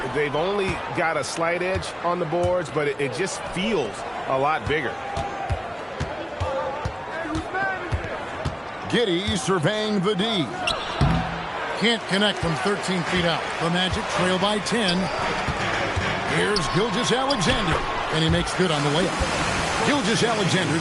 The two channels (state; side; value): identical; both; correlation 1.00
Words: they've only got a slight edge on the boards, but it just feels a lot bigger. Giddey surveying the D. Can't connect from 13 feet out. The Magic trail by 10. Here's Gilgeous-Alexander, and he makes good on the layup.